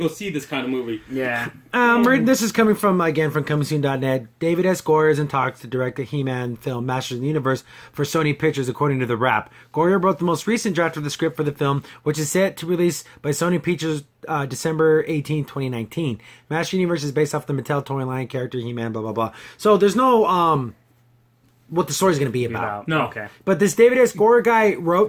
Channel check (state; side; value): identical; both; correlation 1.00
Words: see this kind of movie. Yeah. This is coming from comingsoon.net. David S. Goyer is in talks to direct the He-Man film Masters of the Universe for Sony Pictures, according to The Wrap. Goyer wrote the most recent draft of the script for the film, which is set to release by Sony Pictures December 18, 2019. Masters of the Universe is based off the Mattel toy line character He-Man, blah, blah, blah. So there's no what the story's going to be about. No. Okay. But this David S. Goyer guy